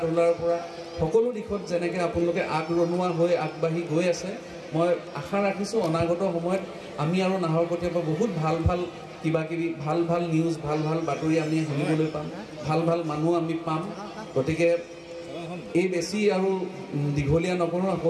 ধূলাৰ পৰা সকলো দিশত যেনেকৈ আপোনালোকে আগৰণুৱা হৈ আগবাঢ়ি গৈ আছে মই আশা ৰাখিছোঁ অনাগত সময়ত আমি আৰু নাহৰকটীয়াৰ পৰা বহুত ভাল কিবাকিবি ভাল নিউজ ভাল বাতৰি আমি শুনিবলৈ পাম, ভাল মানুহ আমি পাম। গতিকে এই বেছি আৰু দীঘলীয়া নকৰোঁ,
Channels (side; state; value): both; identical; correlation 1.00